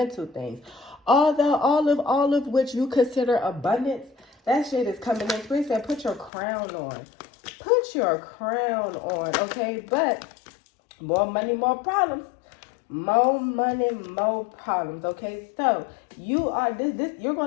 things, all of which you consider abundance, that shit is coming in. Spirit said, put your crown on. Put your crown on, okay? But more money, more problems. More money, more problems, okay? So you are you're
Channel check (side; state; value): right; drops out; at 6.3 s